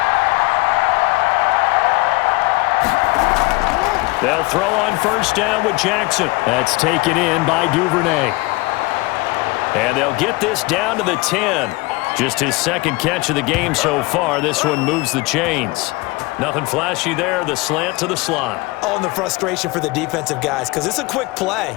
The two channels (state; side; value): quieter; right; 23.7 dB